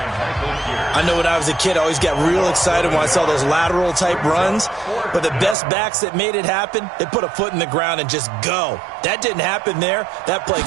know when I was a kid, I always got real excited when I saw those lateral type runs, but the best backs that made it happen, they put a foot in the ground and just go. That didn't happen there. That play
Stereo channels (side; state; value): left; drops out; at 5.6 s